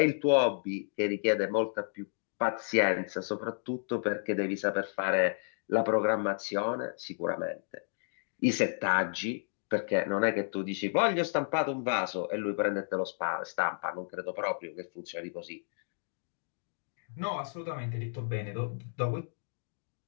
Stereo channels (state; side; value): silent; right; digital silence